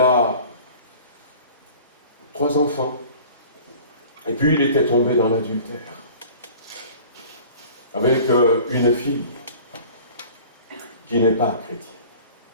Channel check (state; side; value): inverted; both; correlation -0.45